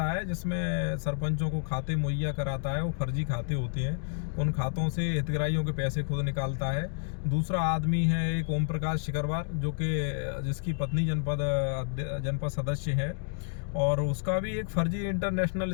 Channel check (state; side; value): silent; right; digital silence